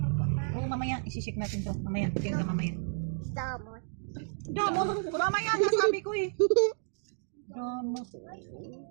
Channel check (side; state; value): left; silent; digital silence